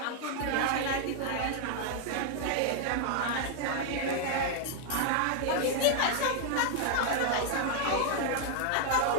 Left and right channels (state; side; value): different; both; correlation 0.00